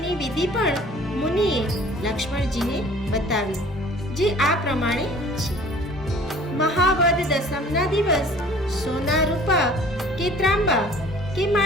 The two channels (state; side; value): normal; both; correlation 0.49